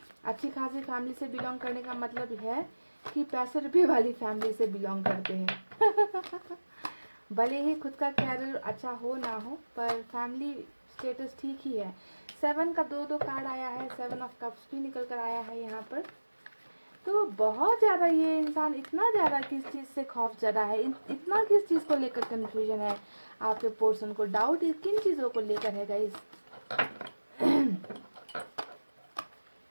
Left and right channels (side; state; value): both; inverted; correlation -1.00